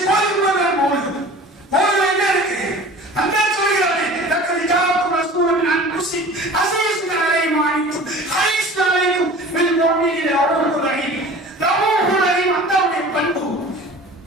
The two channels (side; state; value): both; normal; correlation 0.42